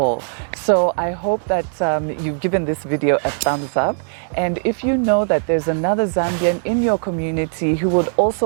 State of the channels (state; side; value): silent; left; digital silence